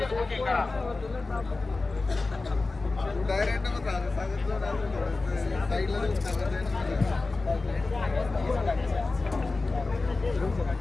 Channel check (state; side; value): quieter; right; 3.5 dB